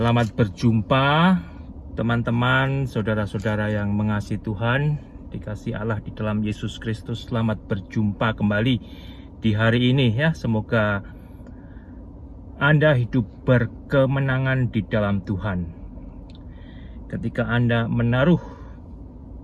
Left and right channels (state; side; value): identical; both; correlation 1.00